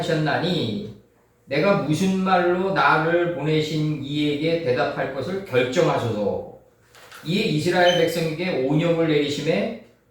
내가 무슨 말로 나를 보내신 이에게 대답할 것을 결정하소서. 이에 이스라엘 백성에게 온역을 내리심에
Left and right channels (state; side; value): identical; both; correlation 1.00